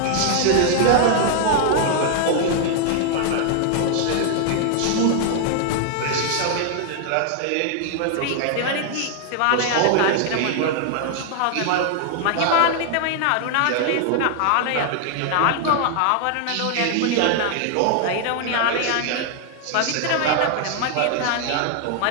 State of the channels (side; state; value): both; different; correlation 0.00